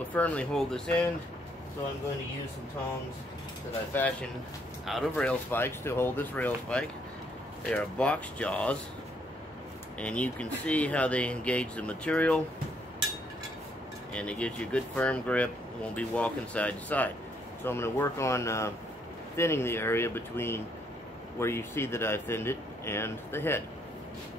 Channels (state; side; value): normal; both; correlation 0.70